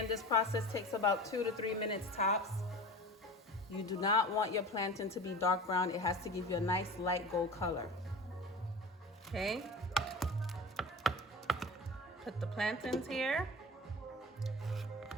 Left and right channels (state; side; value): normal; both; correlation 0.35